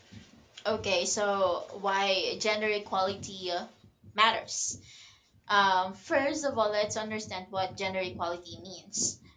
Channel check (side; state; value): both; identical; correlation 1.00